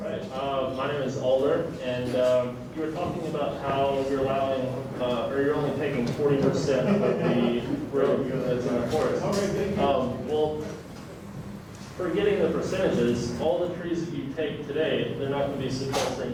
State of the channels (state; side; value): identical; both; correlation 1.00